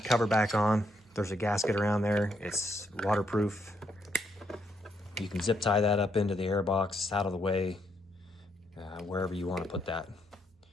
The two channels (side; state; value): both; normal; correlation 0.76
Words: cover back on, there's a gasket around there. It's waterproof. You can zip tie that up into the air box, out of the way, wherever you want to put that.